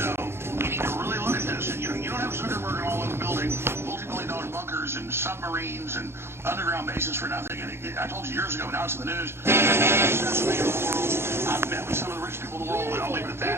we need to really look at this. And you don't have Zuckerberg all in the building, multi-million-dollar bunkers and submarines and underground bases for nothing. And I told you years ago, now it's in the news. I've met with some of the rich people in the world, and I'll leave it at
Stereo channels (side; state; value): left; late; 0.12 ms